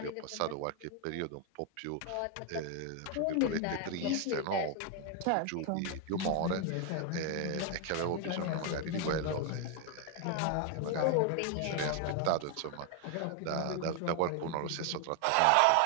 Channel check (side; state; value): both; different; correlation 0.01